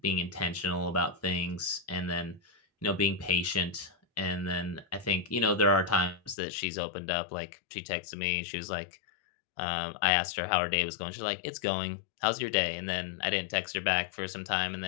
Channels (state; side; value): drops out; right; at 6.4 s